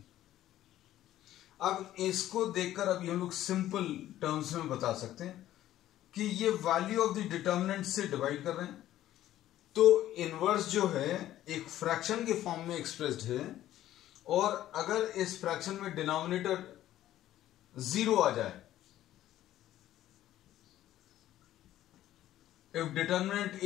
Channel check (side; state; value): right; quieter; 13.3 dB